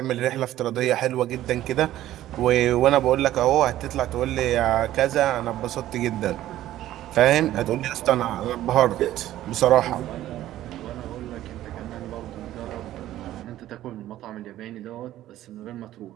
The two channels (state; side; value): quieter; left; 13.7 dB